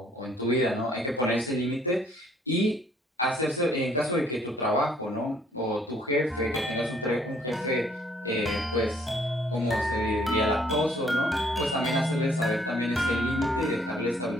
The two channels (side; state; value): both; normal; correlation 0.63